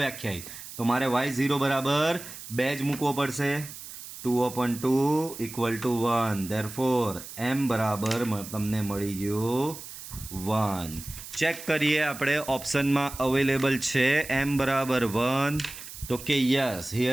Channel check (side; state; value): right; noise; hiss, 13 dB below the sound